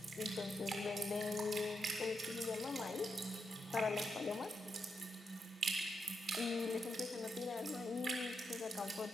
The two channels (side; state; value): both; normal; correlation 0.84